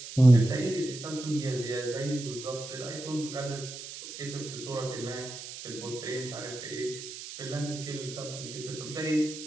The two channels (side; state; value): right; noise; hiss, 11 dB below the sound